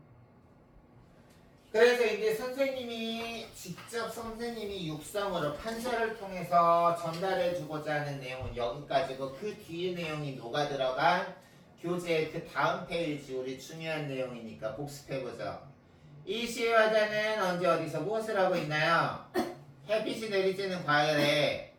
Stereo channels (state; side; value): identical; both; correlation 1.00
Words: 그래서 이제 선생님이 육성으로 판서를 통해서 전달해주고자 하는 내용은 여기까지고 그 뒤에 내용이 녹아 들어간 교재 그 다음 페이지 우리 중요한 내용이니까 복습해보죠. 이 시의 화자는 언제 어디서 무엇을 하고 있나요? 햇빛이 내리쬐는 과열에